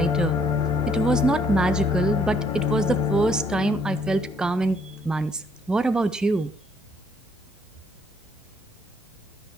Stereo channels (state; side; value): normal; both; correlation 0.67